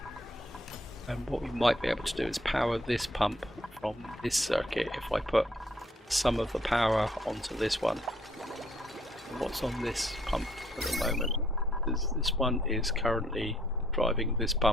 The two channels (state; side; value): normal; both; correlation 0.65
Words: And what we might be able to do is power this pump from this circuit if I put some of the power onto this one. And what's on this pump at the moment? This one is currently driving this